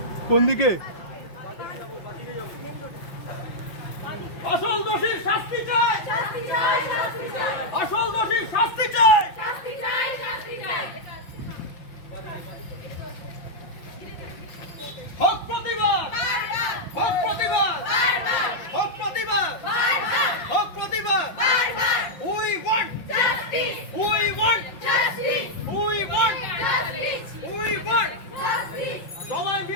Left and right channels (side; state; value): right; late; 5.7 ms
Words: কোন দিকে আসল দোষীর শাস্তি চাই। আসল দোষীর শাস্তি চাই। হক প্রতিবাদ, হক প্রতিবাদ, হক প্রতিবাদ, হক প্রতিবাদ। We want justice. We want justice. We want justice. We want justice. সবাই